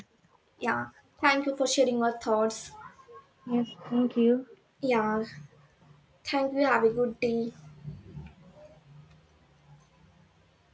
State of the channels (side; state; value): both; identical; correlation 1.00